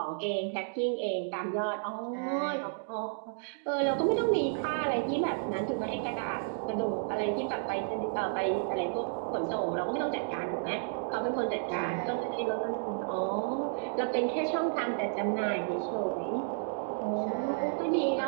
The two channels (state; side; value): silent; left; digital silence